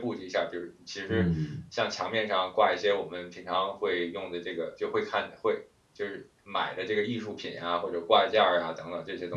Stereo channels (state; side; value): identical; both; correlation 1.00